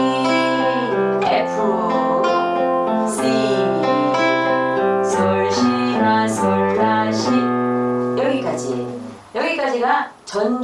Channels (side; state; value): both; identical; correlation 1.00